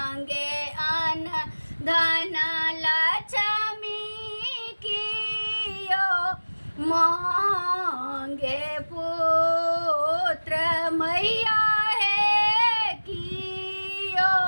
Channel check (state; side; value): inverted; both; correlation -1.00